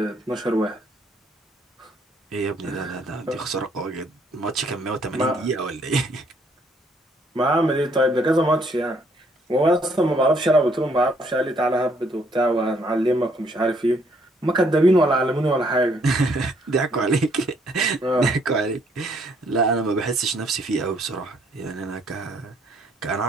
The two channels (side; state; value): both; normal; correlation 0.67